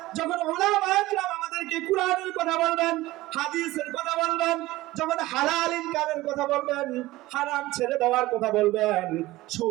যখন উলামা একরাম আমাদেরকে কুরআনের কথা বলবেন, হাদিসের কথা বলবেন, যখন হালাল ইনকামের কথা বলবেন, হারাম ছেড়ে দেওয়ার কথা বলবেন,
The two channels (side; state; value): left; quieter; 18.1 dB